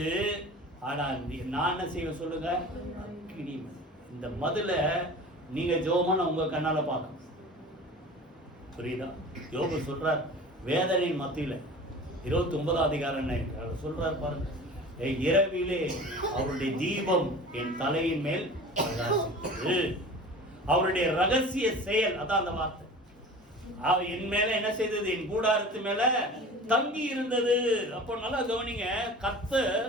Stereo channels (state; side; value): normal; both; correlation 0.39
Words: ஆனா நான் என்ன செய்வேன் சொல்லுங்க? அக்கினி. இந்த மதில நீங்க ஜோமான உங்க கண்ணால பார்க்க புரியுதா? யோபு சொல்றார் வேதனையின் மத்தியில 29ஆம் அதிகாரம் சொல்றார் பாருங்க. இரவிலே அவருடைய தீபம் என் தலையின் மேல் அவருடைய ரகசிய செயல், அதான் அந்த வார்த்தை. என் மேல என்ன செய்தது? என் கூடாரத்து மேல தங்கி இருந்தது. அப்போ நல்லா கவனிங்க, கர்த்தர்